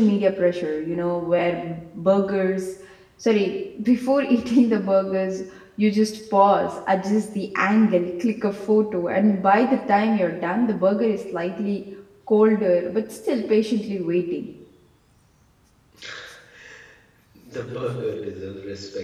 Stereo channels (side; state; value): both; identical; correlation 1.00